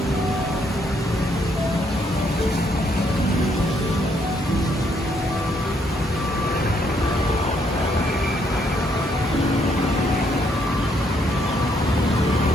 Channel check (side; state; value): both; normal; correlation 0.71